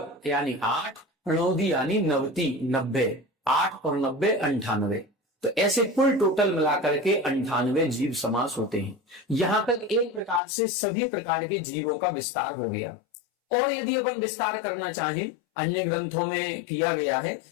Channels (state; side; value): drops out; right; at 10.4 s